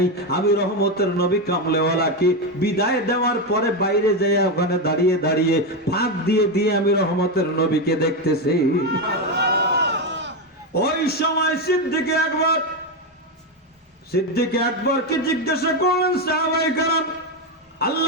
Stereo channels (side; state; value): both; normal; correlation 0.10